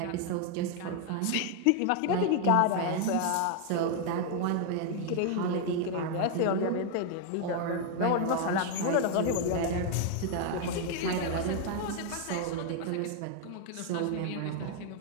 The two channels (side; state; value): both; different; correlation 0.00